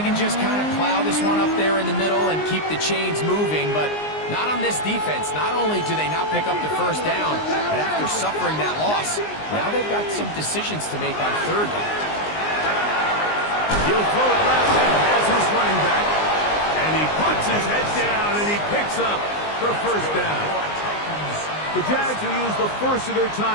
just kind of plow this one up there in the middle and keep the chains moving, but not on this defense. Not only do they not pick up the first down, but after suffering that loss, now they've got some decisions to make on third down. He'll throw it left and has his running back. And he puts his head down and he picks up the first down. The Jags will use the first of their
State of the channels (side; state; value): right; late; 19 ms